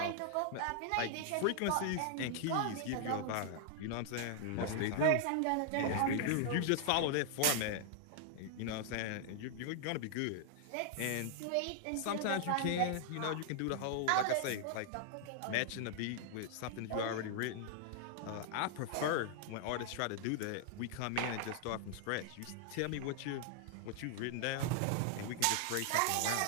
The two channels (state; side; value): different; both; correlation 0.00